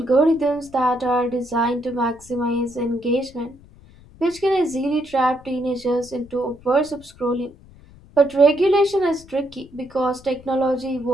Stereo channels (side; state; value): left; noise; rumble, 23 dB below the sound